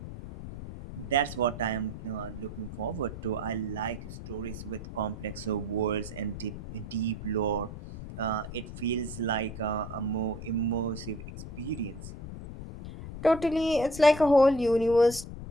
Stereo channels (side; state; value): left; noise; rumble, 10 dB below the sound